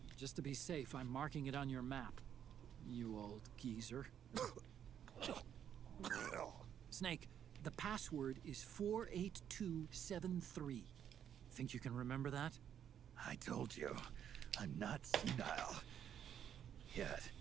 Just to be safe, I'm marking it on your map. You old geezer. Snake, the password is 48273. Think you can remember that? I told you, I'm not senile yet.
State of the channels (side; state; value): left; quieter; 9.3 dB